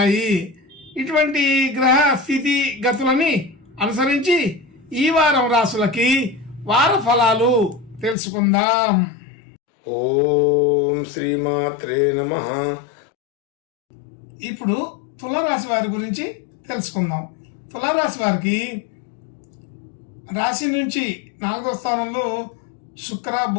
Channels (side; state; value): right; drops out; at 8.2 s